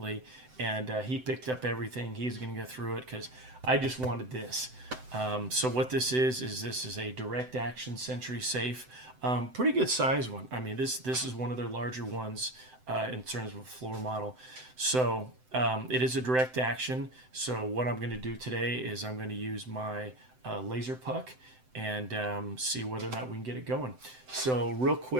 and he picked up everything. He's going to go through it because I just wanted this. So what this is a direct action Sentry safe. Pretty good size one. I mean, this is one of their larger ones in terms of a floor model. So it is a direct action. So what I'm going to do today is I'm going to use my laser puck and see whether or not we can get it going. So real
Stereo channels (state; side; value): late; left; 7.8 ms